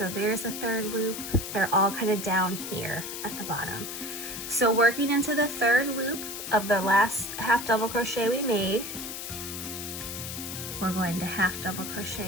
there's the 3rd loop. They're all kind of down here at the bottom. So working into the 3rd loop of the last half double crochet we made, we're going to half double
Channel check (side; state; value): left; noise; hiss, 7 dB below the sound